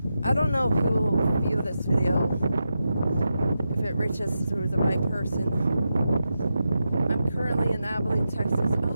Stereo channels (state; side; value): inverted; both; correlation -0.88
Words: I don't know who will view this video, if it reaches through the right person. I'm currently in Abeline, Texas.